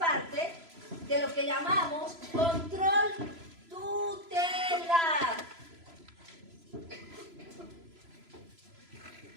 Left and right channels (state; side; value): late; left; 3.0 ms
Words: de lo que llamamos control tutelar.